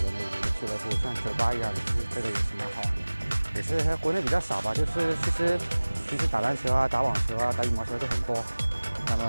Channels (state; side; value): inverted; both; correlation -1.00